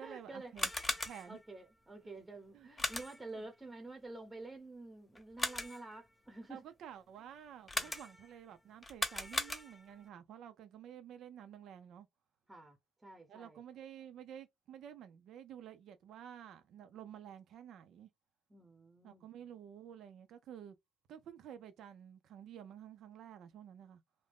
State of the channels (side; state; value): both; normal; correlation 0.85